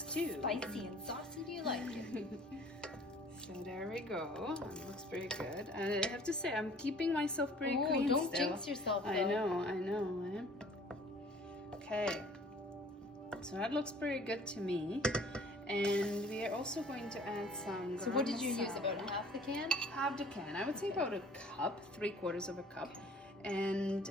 Spicy and saucy, do you like it? So there we go. It looks pretty good. And I have to say, I'm keeping myself pretty clean don't still. jinx yourself, though. I know. Eh? Okay. So that looks pretty good to me. And we are also going to add some So what did you use? garam About masala. half the can? Half the can. I would say about a cup, 3/4 of a cup. And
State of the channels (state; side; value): normal; both; correlation 0.52